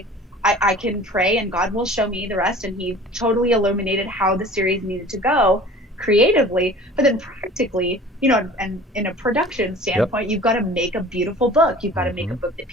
I can pray, and God will show me the rest. And he totally illuminated how the series needed to go creatively, but then practically, and in a production standpoint, You've got to make a beautiful book. You've got to make a book that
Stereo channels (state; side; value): normal; both; correlation 0.44